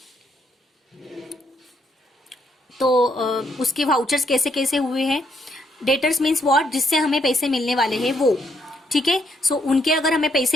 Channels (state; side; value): normal; both; correlation 0.74